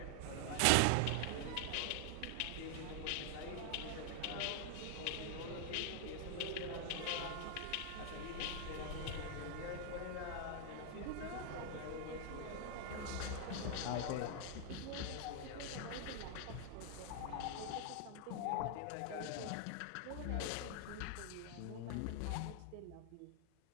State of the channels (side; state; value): both; different; correlation 0.00